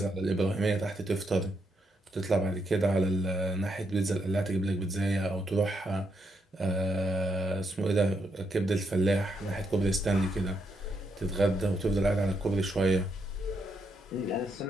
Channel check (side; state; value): both; normal; correlation 0.79